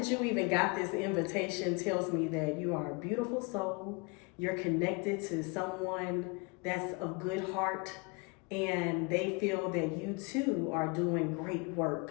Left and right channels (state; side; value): quieter; right; 30.3 dB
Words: you even got this invitation tells me that you are a beautiful soul, you're connected to someone that's of good heart, and they feel that you too are doing great